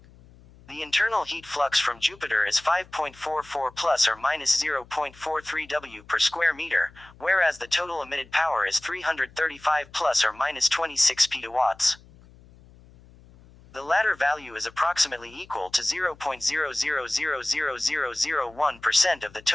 The internal heat flux from Jupiter is 5.44 plus or minus 0.43 W per square meter, whereas the total emitted power is 335 plus or minus 26 petawatts. The latter value is approximately equal to 0.000001% of the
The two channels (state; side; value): noise; left; hum, 24 dB below the sound